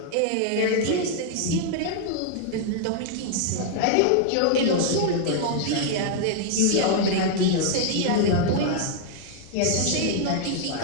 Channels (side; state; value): both; different; correlation 0.00